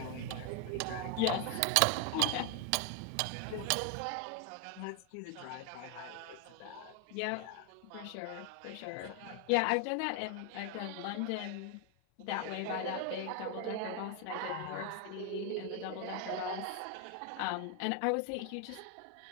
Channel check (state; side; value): different; both; correlation 0.00